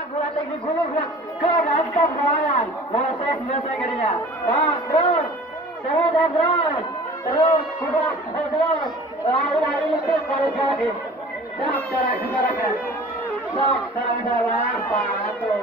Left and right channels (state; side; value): normal; both; correlation 0.44